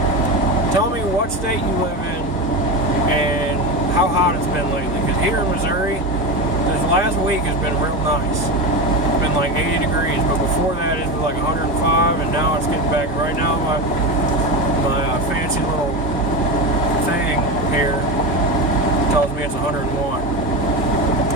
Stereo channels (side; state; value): both; normal; correlation 0.20